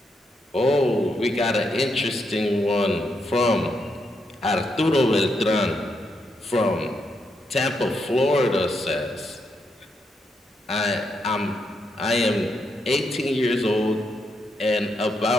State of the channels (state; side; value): normal; both; correlation 0.80